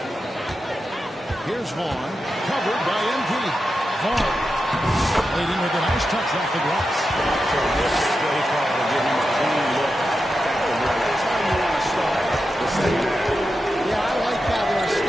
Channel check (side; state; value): both; normal; correlation 0.89